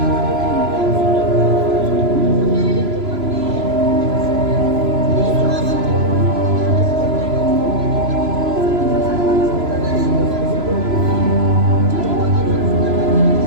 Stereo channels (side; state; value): left; late; 3.0 ms